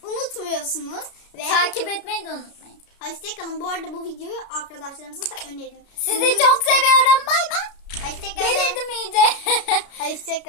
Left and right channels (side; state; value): right; late; 33 ms